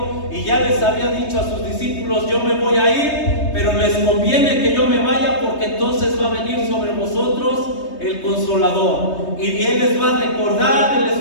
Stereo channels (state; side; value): late; right; 3.2 ms